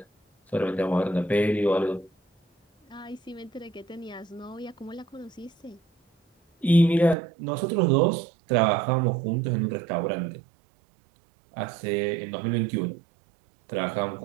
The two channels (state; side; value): drops out; left; at 7.2 s